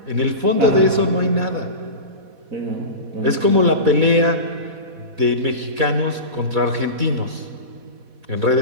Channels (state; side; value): late; left; 4.1 ms